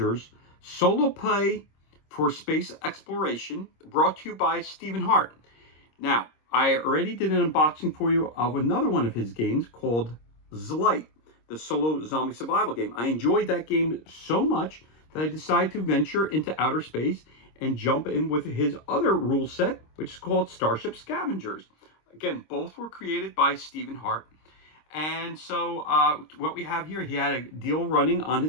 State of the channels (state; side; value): late; right; 26 ms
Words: solo play for space exploration, brought to you by Stephen Hart. Now, I already did an unboxing for you of another one of his games called Zlight, the solo zombie survival game. I enjoyed that game so much that I decided to venture into outer space and jump in with his other rule set, which is called Starship Scavengers. Again, both were created by Stephen Hart. And so what we have here, he had a deal running on